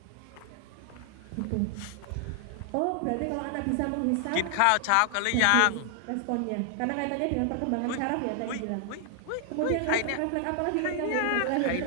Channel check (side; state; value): both; different; correlation 0.00